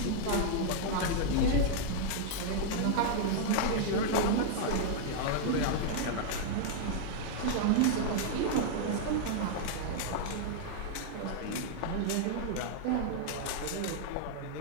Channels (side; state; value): both; different; correlation -0.01